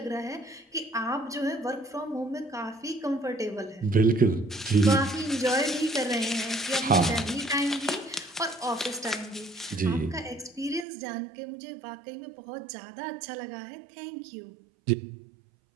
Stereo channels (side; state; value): left; drops out; at 10.9 s